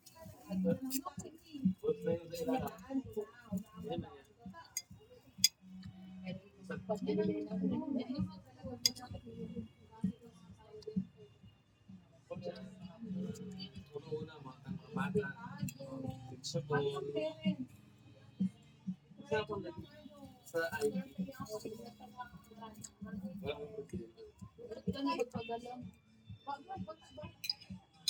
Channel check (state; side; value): identical; both; correlation 1.00